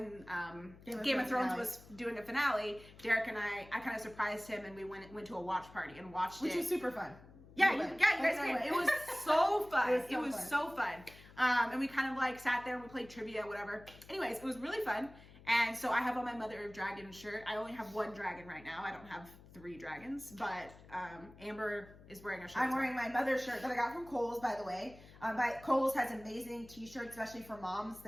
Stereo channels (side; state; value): left; noise; hum, 20 dB below the sound